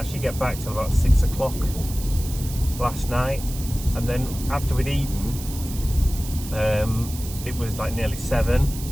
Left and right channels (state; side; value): noise; right; hiss, 12 dB below the sound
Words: get back till about 6 o'clock last night, and then after we'd eaten, it was like nearly